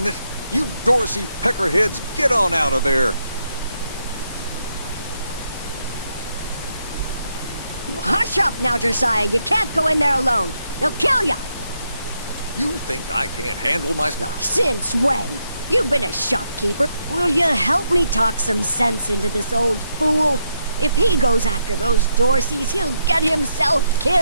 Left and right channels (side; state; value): both; inverted; correlation -0.79